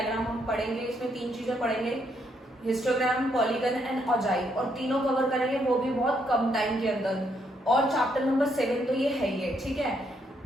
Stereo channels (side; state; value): both; normal; correlation 0.74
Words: हम पढ़ेंगे। इसमें तीन चीजें पढ़ेंगे, हिस्टोग्राम, पॉलीगन एंड ऑजाई, और तीनों कवर करेंगे वो भी बहुत कम टाइम के अंदर। और चैप्टर नंबर 7 तो ये है ही है, ठीक है।